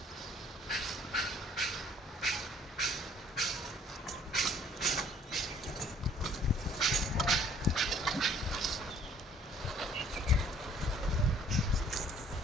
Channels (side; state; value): both; normal; correlation 0.58